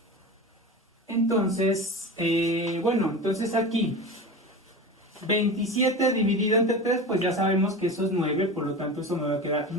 Entonces, entonces aquí 27 dividido entre 3, pues ya sabemos que eso es 9, por lo tanto eso me va a quedar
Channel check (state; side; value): normal; both; correlation 0.29